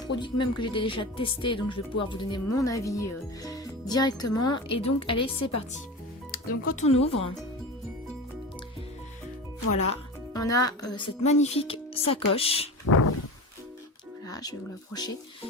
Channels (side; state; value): both; normal; correlation 0.29